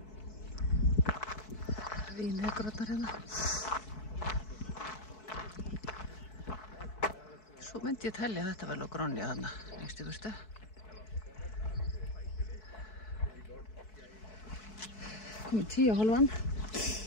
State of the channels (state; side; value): late; right; 4.6 ms